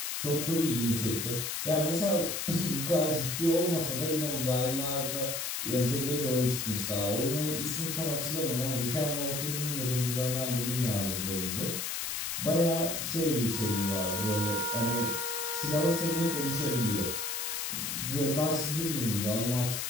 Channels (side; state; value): left; noise; hiss, 2 dB below the sound